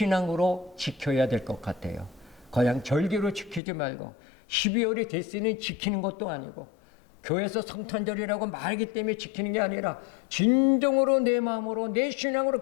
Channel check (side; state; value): right; drops out; at 3.6 s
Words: 지켜야 될 것 같아요. 그냥 절기로 지키지 말고 12월이 됐으니 지키는 것도 아니고 교회에서 성탄절이라고 말하기 때문에 지키는 게 아니라 진정으로 내 마음으로 내